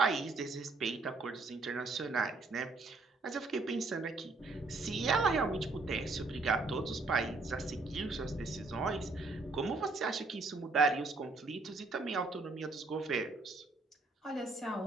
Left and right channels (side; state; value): left; quieter; 3.5 dB